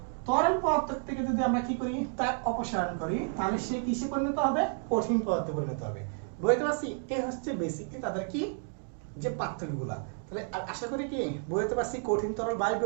তরল পদার্থ থেকে যদি আমরা কি করি তাপ অপসারণ করি তাহলে সে কিসে পরিণত হবে, কঠিন পদার্থে পরিণত হবে। বুঝতে পারছি? এই হচ্ছে বেসিক্যালি তাদের কি যে পার্থক্যগুলা। তাহলে আশা করি কি বুঝতে পারছি কঠিন তরল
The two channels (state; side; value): silent; left; 57 dB below the other